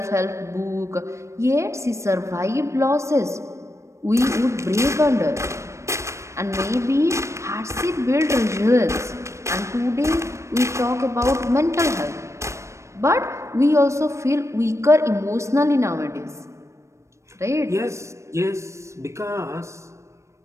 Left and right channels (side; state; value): left; late; 0.14 ms